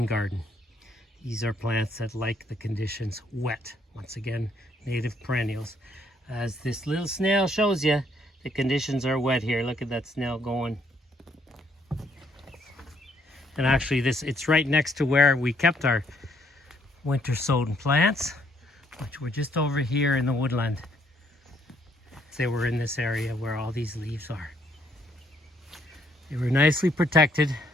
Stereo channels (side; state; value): both; normal; correlation 0.69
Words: garden. These are plants that like the conditions wet. Once again, native perennials. As this little snail shows you, the conditions are wet here. Look at that snail going. And actually, it's right next to where we kept our winter sown plants, which were just over here in the woodland. They were in this area where all these leaves are. They were nicely protected,